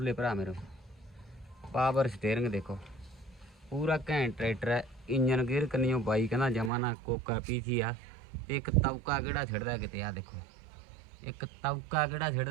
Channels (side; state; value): left; drops out; at 6.7 s